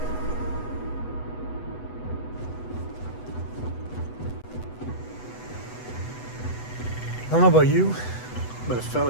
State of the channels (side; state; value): right; late; 8.1 ms